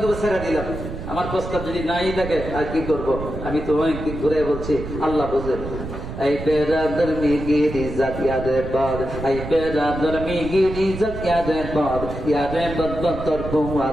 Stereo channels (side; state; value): right; noise; rumble, 8 dB below the sound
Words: দুটো ছেড়ে দিলাম, আমার প্রস্তাব যদি নাই থাকে আর কি করব? আমি তো অনেক দিক ঘুরে বলছি, আল্লাহ বুঝেন। এই বেরাদর মিগির ইজ্জত ইয়াদে বাদ, এই বেরাদর মিগির ইজ্জত ইয়াদে বাদ, ইয়াদে বদ তোর